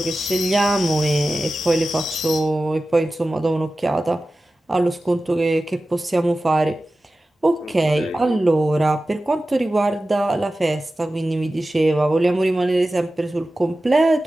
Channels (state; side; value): normal; both; correlation 0.95